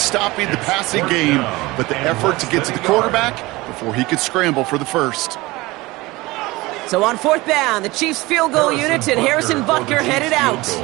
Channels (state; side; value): quieter; left; 21.1 dB